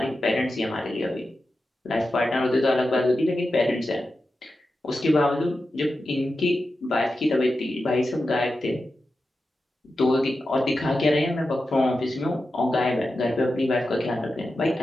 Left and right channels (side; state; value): both; normal; correlation 0.91